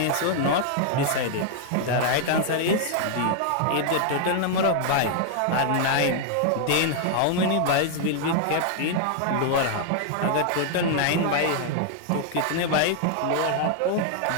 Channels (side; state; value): both; different; correlation 0.00